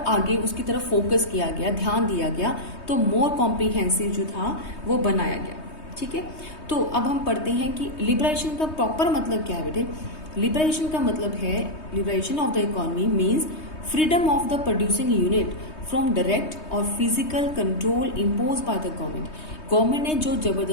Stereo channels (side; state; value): right; late; 3.2 ms